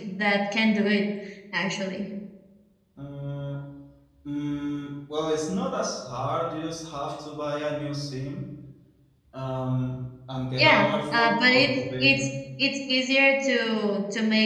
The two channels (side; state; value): both; identical; correlation 1.00